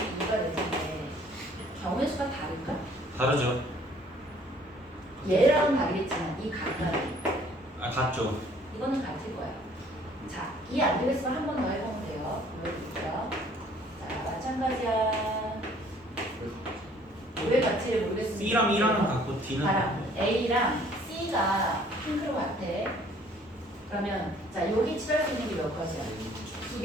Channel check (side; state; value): both; normal; correlation 0.58